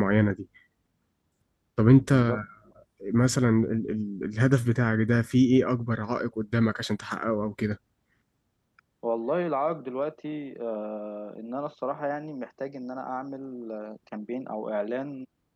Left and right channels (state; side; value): identical; both; correlation 1.00